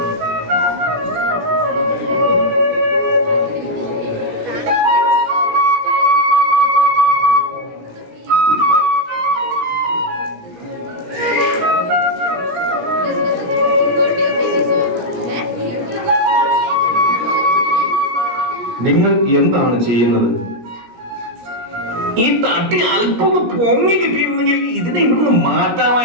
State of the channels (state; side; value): late; left; 17 ms